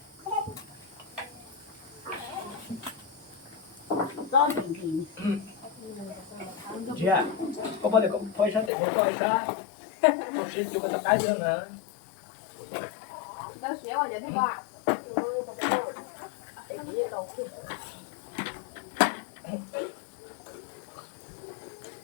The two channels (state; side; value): drops out; right; at 8.7 s